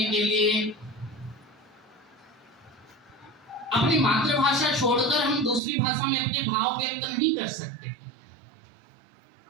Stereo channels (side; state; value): left; drops out; at 5.6 s